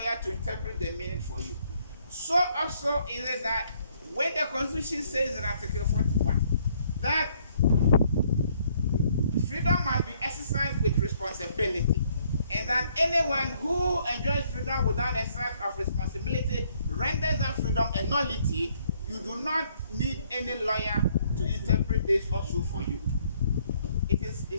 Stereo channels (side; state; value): both; inverted; correlation -0.66